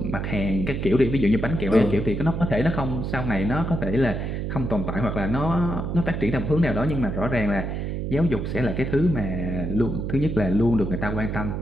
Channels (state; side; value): noise; right; hum, 3 dB below the sound